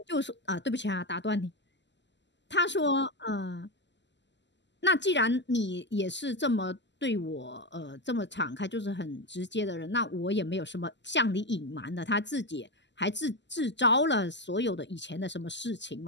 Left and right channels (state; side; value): late; right; 0.52 ms